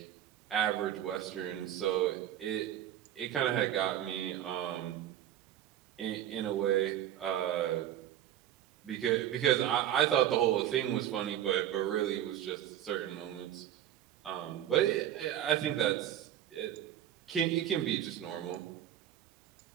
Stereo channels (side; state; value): left; quieter; 11.4 dB